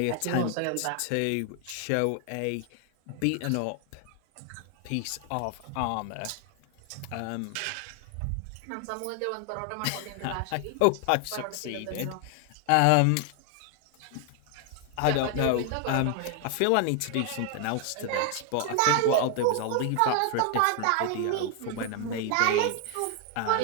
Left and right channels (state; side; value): different; both; correlation 0.00